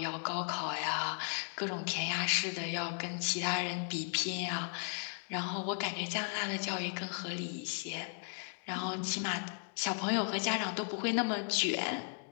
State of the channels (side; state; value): right; silent; 54 dB below the other